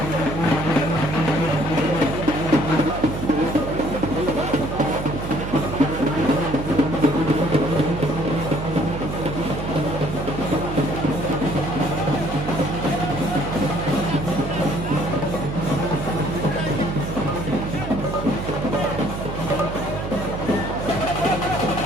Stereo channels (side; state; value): right; noise; hum, 6 dB below the sound